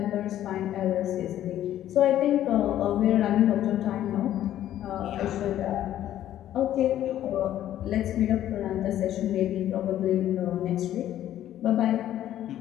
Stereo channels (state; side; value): quieter; right; 12.2 dB